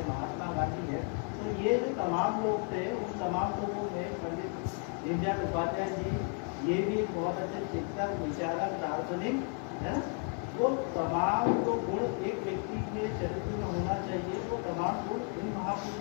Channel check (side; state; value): right; quieter; 36.0 dB